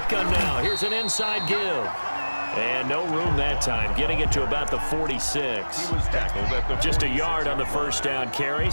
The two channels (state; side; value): inverted; both; correlation -1.00